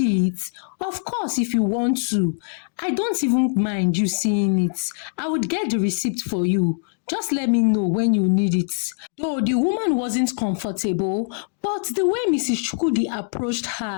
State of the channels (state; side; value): silent; right; digital silence